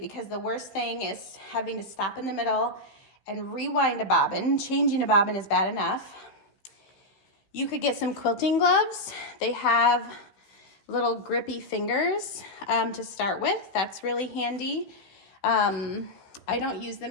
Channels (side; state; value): right; late; 16 ms